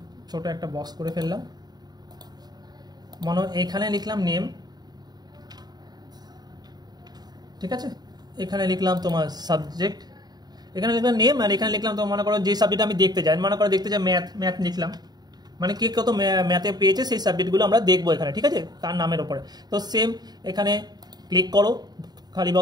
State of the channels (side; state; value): left; late; 0.20 ms